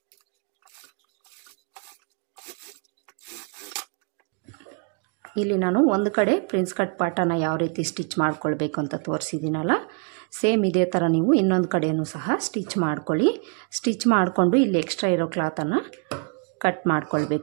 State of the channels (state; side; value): quieter; left; 38.3 dB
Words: ಇಲ್ಲಿ ನಾನು ಒಂದು ಕಡೆ ಪ್ರಿನ್ಸ್ ಕಟ್ ಪಾರ್ಟನ್ನು ಯಾವ ರೀತಿ ಸ್ಟಿಚ್ ಮಾಡ್ಕೊಳ್ಬೇಕು ಅಂತ ತೋರಿಸಿದ್ದೀನಲ್ಲ, ಸೇಮ್ ಇದೇ ಥರ ನೀವು ಇನ್ನೊಂದು ಕಡೆಯೂ ಸಹ ಸ್ಟಿಚ್ ಮಾಡ್ಕೊಳ್ಳಿ. ಸ್ಟಿಚ್ ಮಾಡಿಕೊಂಡು ಇಲ್ಲಿ ಎಕ್ಸ್ಟ್ರಾ ಇರೋ ಕ್ಲಾತನ್ನು ಕಟ್